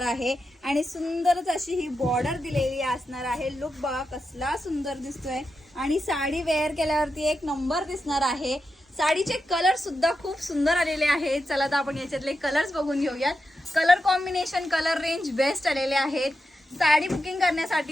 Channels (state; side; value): normal; both; correlation 0.88